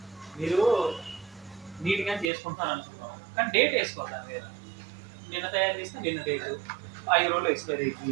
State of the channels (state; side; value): drops out; left; at 2.2 s